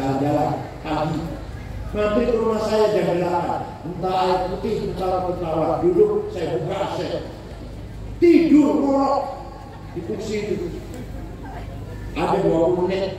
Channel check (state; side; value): identical; both; correlation 1.00